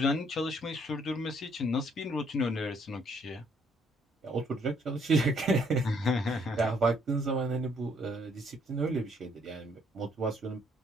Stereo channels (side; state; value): both; normal; correlation 0.66